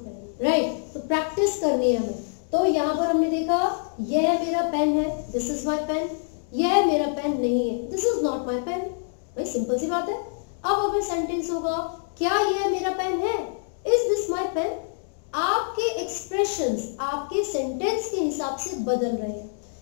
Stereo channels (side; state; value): right; silent; digital silence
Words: राइट। तो प्रैक्टिस करनी है हमें। तो यहाँ पर हमने देखा यह मेरा पेन है, दिस इज माय पेन, यह मेरा पेन नहीं है, this is not my pen. भाई सिंपल सी बात है। अब अगर सेंटेंस होगा क्या यह मेरा पेन है, इज दिस माय पेन, आपके एक्सप्रेशंस आपके सेंटेंस के हिसाब से बदल रहे हैं।